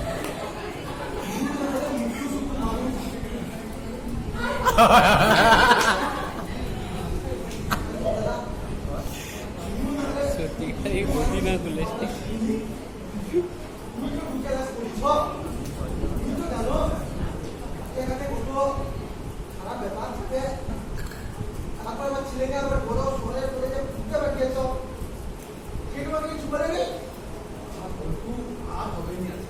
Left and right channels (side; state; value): both; identical; correlation 1.00